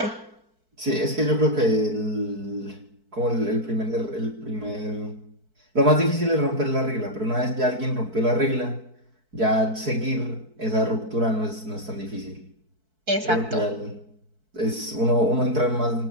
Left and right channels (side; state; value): left; late; 4.6 ms